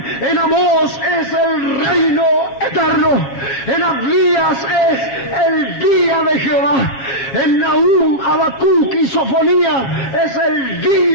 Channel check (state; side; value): late; right; 7.4 ms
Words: En Amós es el reino eterno. En Abdías es el día de Jehová. En Nahum, Habacuc y Sofonía es el